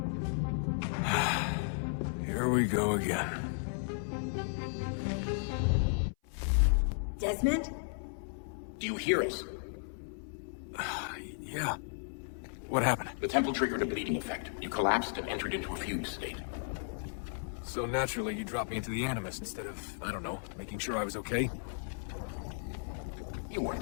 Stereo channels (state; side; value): silent; right; 55 dB below the other